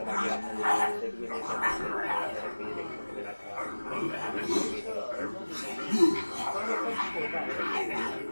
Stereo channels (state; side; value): inverted; both; correlation -1.00